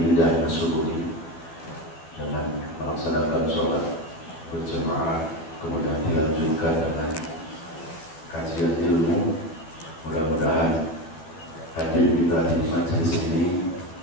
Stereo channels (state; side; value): late; right; 12 ms